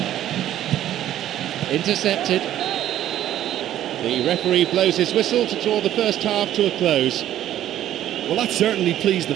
Intercepted. The referee blows his whistle to draw the first half to a close. Well, that certainly pleased the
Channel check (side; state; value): left; quieter; 12.2 dB